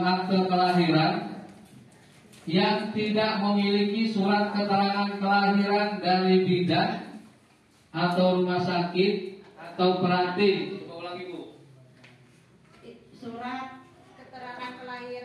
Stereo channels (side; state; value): both; identical; correlation 1.00